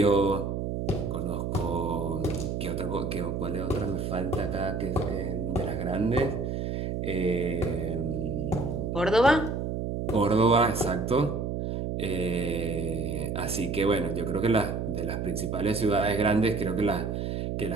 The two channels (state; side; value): noise; right; hum, 2 dB below the sound